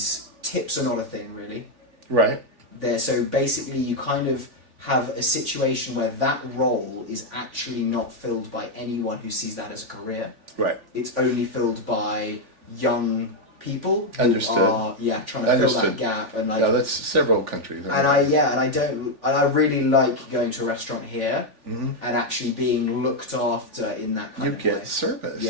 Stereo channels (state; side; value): late; left; 3.4 ms